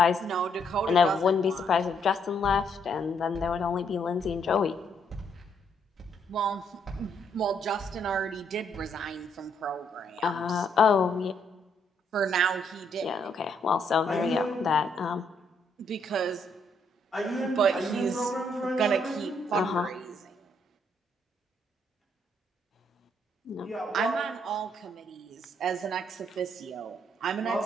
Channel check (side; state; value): both; normal; correlation 0.72